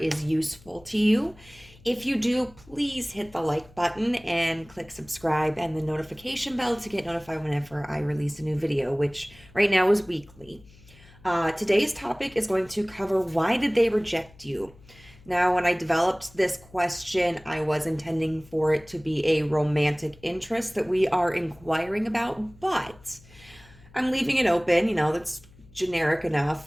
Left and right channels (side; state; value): left; noise; hum, 25 dB below the sound